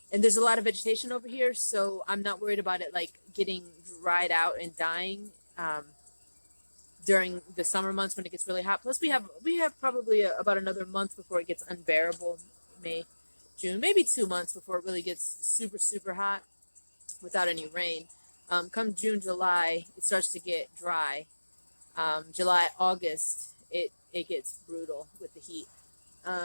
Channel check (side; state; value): both; inverted; correlation -1.00